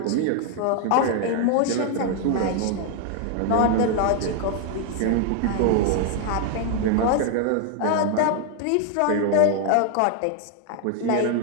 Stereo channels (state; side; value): different; both; correlation 0.00